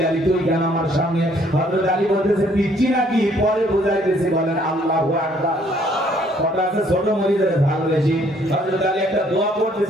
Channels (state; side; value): normal; both; correlation 0.63